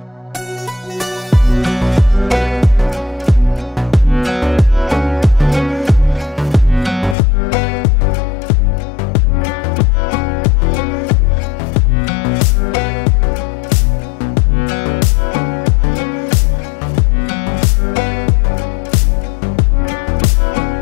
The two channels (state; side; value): drops out; right; at 7.2 s